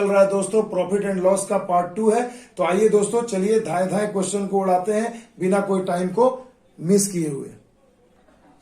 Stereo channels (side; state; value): both; identical; correlation 1.00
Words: रहा है दोस्तों। प्रॉफिट एंड लॉस का पार्ट 2 है। तो आइए दोस्तों, चलिए धाए धाए क्वेश्चन को उड़ाते हैं बिना कोई टाइम को मिस किए हुए।